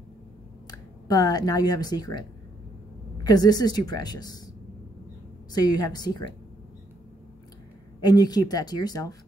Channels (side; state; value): both; normal; correlation 0.73